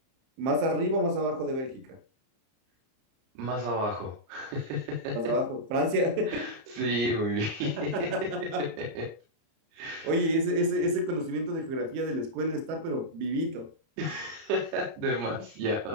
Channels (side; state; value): left; late; 31 ms